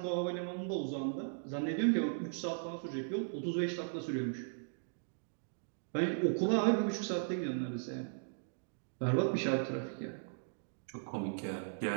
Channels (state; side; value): silent; left; digital silence